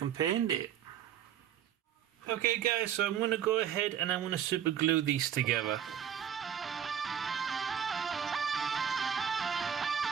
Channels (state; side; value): quieter; left; 9.3 dB